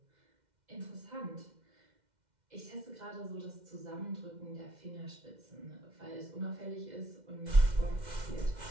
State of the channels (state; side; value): late; left; 2.1 ms